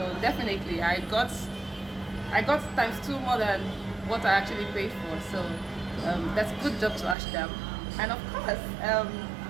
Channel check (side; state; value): left; drops out; at 7.2 s